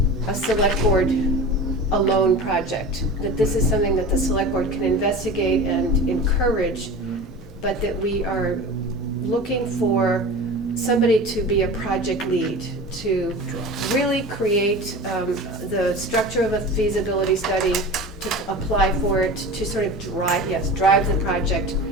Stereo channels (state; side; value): normal; both; correlation 0.34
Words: a select board alone project, that this is something that the select board can investigate and encourage, but that we are looking for somebody to be a project lead, to really create the structure of a feasibility study, to apply for it, to sort of drive the project